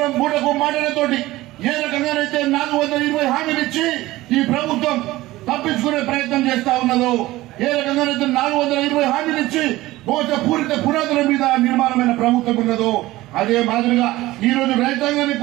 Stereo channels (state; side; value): quieter; left; 17.7 dB